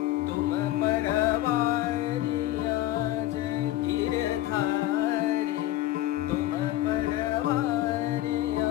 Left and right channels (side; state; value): right; quieter; 14.5 dB